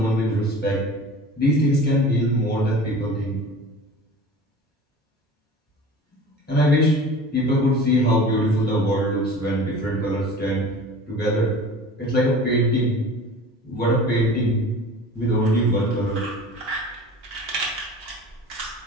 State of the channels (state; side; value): normal; both; correlation 0.39